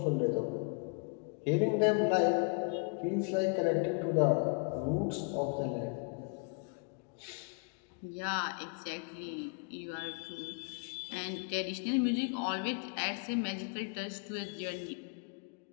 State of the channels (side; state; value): right; quieter; 35.5 dB